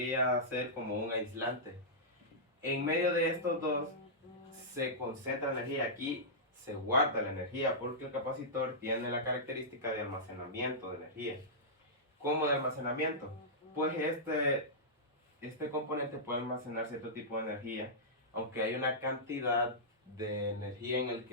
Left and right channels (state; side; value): normal; both; correlation -0.13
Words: ser como un aislante. En medio de estos dos se concentra energía. Aquí se guarda la energía porque el capacitor tiene la característica de almacenamiento de energía. ¿Cómo de almacenamiento? Pues este componente puede almacenar cierto tipo de energía, aunque hay una cantidad de energía en el